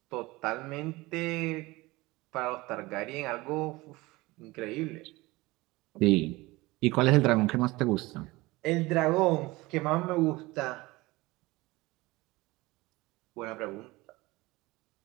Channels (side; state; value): left; quieter; 21.3 dB